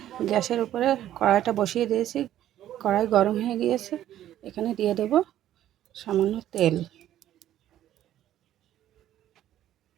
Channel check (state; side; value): quieter; left; 12.3 dB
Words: গ্যাসের উপরে কড়াইটা বসিয়ে দিয়েছি। কড়াই গরম হয়ে গিয়েছে। এখানে দিয়ে দেব সামান্য তেল।